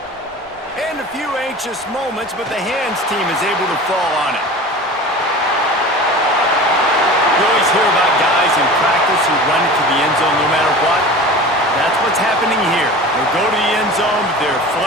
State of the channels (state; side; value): normal; both; correlation 0.36